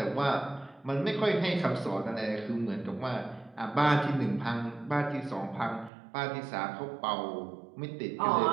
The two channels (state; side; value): drops out; left; at 5.9 s